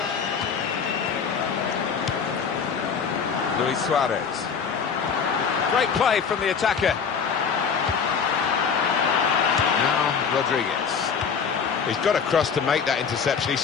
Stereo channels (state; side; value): quieter; right; 6.3 dB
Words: Luis Suarez. Great play from the attacker. Now Rodriguez. He's got across to make that interception. He